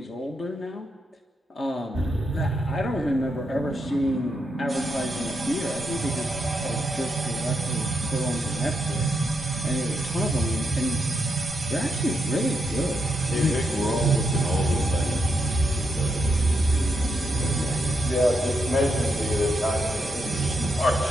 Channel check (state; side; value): normal; both; correlation 0.81